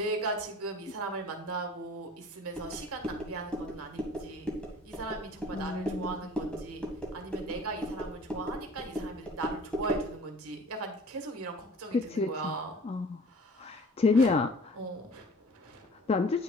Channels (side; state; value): both; normal; correlation 0.47